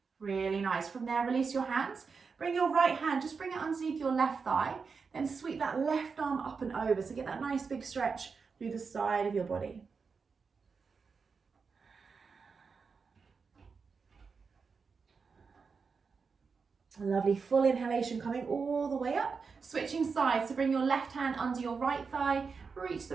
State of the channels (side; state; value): left; quieter; 5.2 dB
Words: Really nice. From there, release your hands. Bring your right hand, just bring it underneath your left thigh, then sweep that left arm up and over. So get that nice big stretch through the side of your body. A lovely full inhalation coming all the way up. Switching sides, so bring your left hand under your right thigh, reach